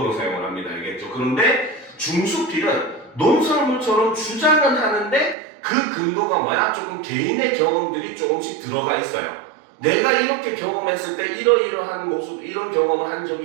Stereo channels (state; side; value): drops out; left; at 5.4 s